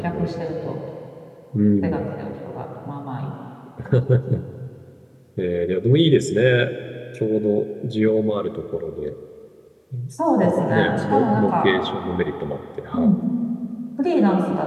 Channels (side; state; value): both; identical; correlation 1.00